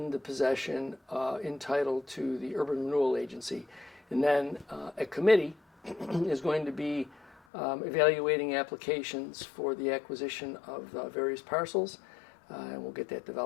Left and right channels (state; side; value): drops out; right; at 7.4 s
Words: the possession entitled to the Urban Renewal Agency. And then a committee is going to be evaluating applications for the acquisition of various parcels, and we'll get that